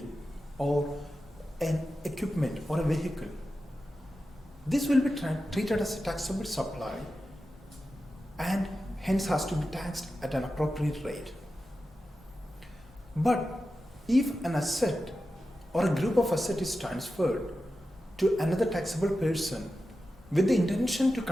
or an equipment or a vehicle, this will be treated as a taxable supply and hence has to be taxed at an appropriate rate. But if an asset or a group of assets is transferred to another taxable person with the intention to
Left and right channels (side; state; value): both; normal; correlation 0.92